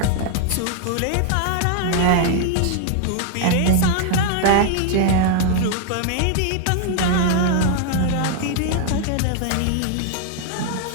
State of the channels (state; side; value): different; both; correlation 0.00